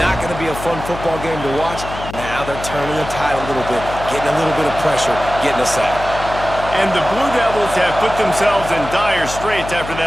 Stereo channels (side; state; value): left; noise; hum, 10 dB below the sound